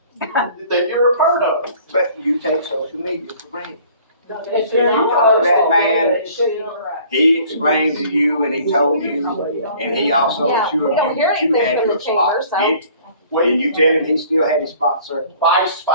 that you're a part of. but you take social media for granted. It's If you not talk to that posted, man, it should be correct. He explained to you and he told you, and he also Yeah, assured we don't you hear that you anything had from your the chamber, spot. so. Did you tell him he still had his spot, sir? 5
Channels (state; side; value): inverted; both; correlation -0.53